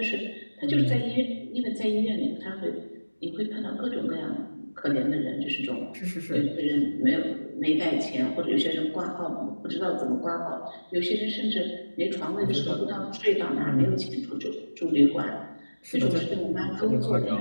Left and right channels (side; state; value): both; inverted; correlation -1.00